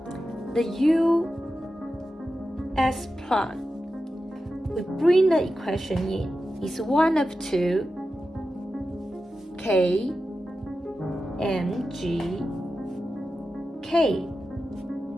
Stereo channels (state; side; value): normal; both; correlation 0.92